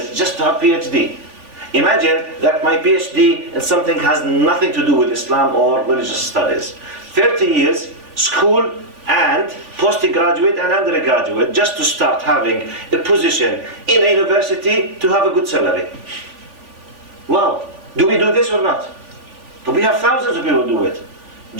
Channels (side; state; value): left; late; 3.5 ms